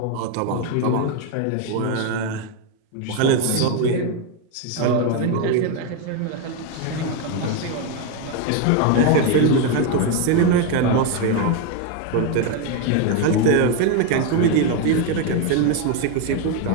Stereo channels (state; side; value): different; both; correlation 0.02